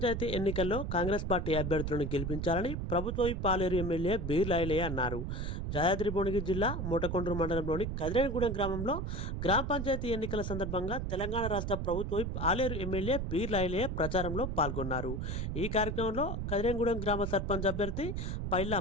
ఎన్నికల్లో కాంగ్రెస్ పార్టీ అభ్యర్థులను గెలిపించాలని ప్రభుత్వ విప్ పాలేరు ఎమ్మెల్యే బీర్ లాయలయ్య అన్నారు. యాదాద్రి భువనగిరి జిల్లా మూటకొండూరు మండలంలోని కదిరేనిగూడెం గ్రామంలో గ్రామ పంచాయతీ ఎన్నికల సందర్భంగా తెలంగాణ రాష్ట్ర ప్రభుత్వ విప్ ఆలేరు ఎమ్మెల్యే బీర్ లాయలయ్య ప్రచారంలో పాల్గొన్నారు. ఈ కార్యక్రమంలో కదిరేనిగూడెం గ్రామ సర్పంచ్ అభ్యర్థి పైల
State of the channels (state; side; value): noise; right; rumble, 3 dB below the sound